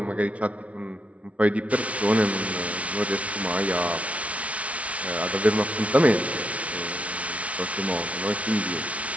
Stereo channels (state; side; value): late; left; 0.065 ms